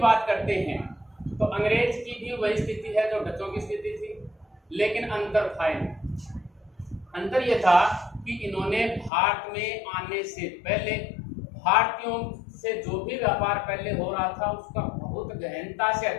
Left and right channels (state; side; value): drops out; right; at 9.1 s